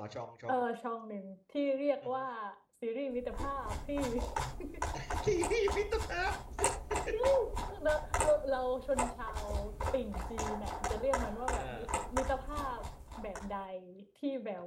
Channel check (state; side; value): identical; both; correlation 1.00